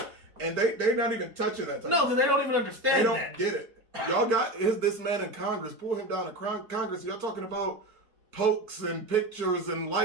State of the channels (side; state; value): left; late; 4.5 ms